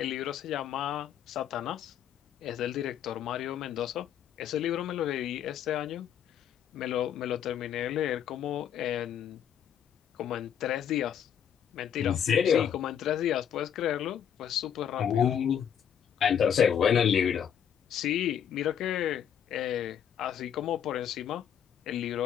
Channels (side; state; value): right; quieter; 8.9 dB